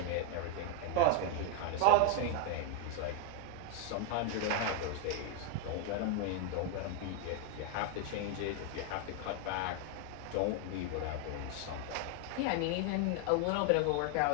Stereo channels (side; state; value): both; different; correlation 0.00